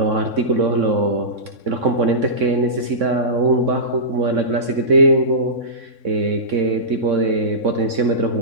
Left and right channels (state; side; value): late; left; 3.6 ms